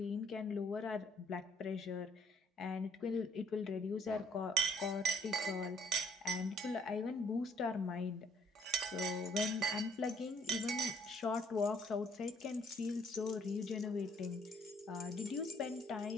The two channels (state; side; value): normal; both; correlation 0.64